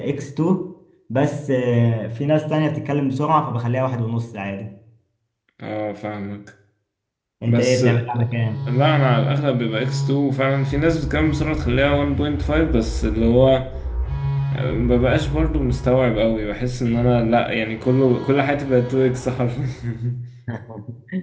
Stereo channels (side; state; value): both; identical; correlation 1.00